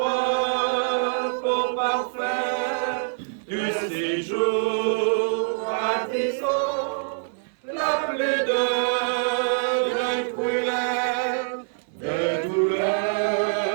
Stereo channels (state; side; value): silent; left; 62 dB below the other